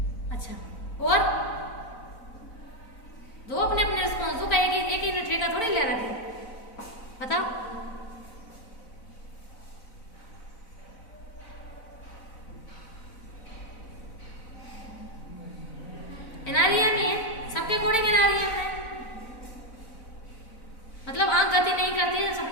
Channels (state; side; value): late; right; 4.0 ms